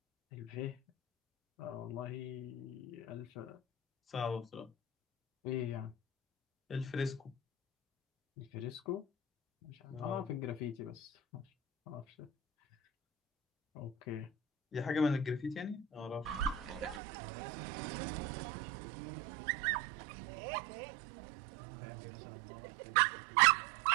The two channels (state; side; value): drops out; left; at 17.0 s